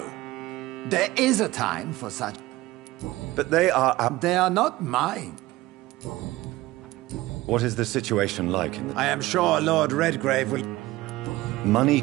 There is a time for such... But they are... They are not mine. What is the situation like in the... I am sure Lord Redgrave will... Money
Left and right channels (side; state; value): left; quieter; 18.2 dB